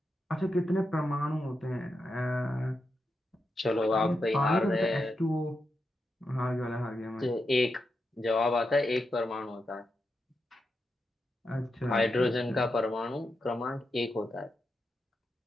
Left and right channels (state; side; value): normal; both; correlation 0.86